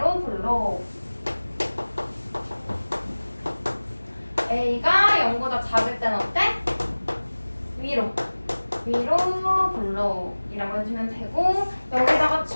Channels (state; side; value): inverted; both; correlation -1.00